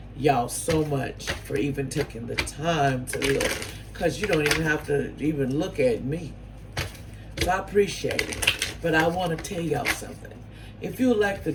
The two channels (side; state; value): both; identical; correlation 1.00